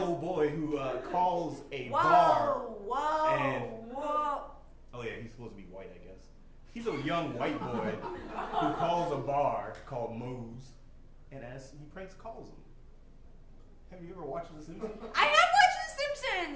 boy who calls a bar. Whoa! Oh yeah, he's supposed to be white, I guess. He's a young white boy who calls a bar called Moe's, and as he pranks calls them. Have you ever watched The Simpsons? I have watched The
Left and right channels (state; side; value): identical; both; correlation 1.00